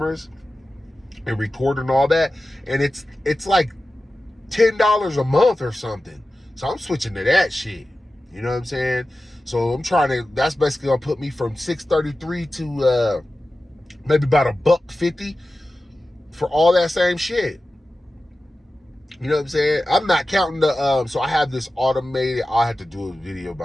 and record and all that. And it's like $10 a month or something. So I'm switching to that shit. You know what I'm saying? So that's basically gonna put me from $633 to maybe about $150 for all that same shit. You know what I'm saying? I'm not counting the so I have this automated, I'll have to do a video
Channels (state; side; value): normal; both; correlation 0.94